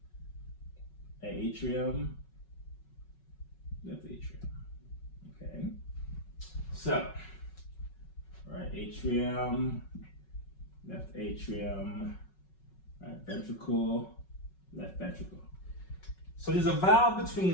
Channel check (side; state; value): right; late; 5.4 ms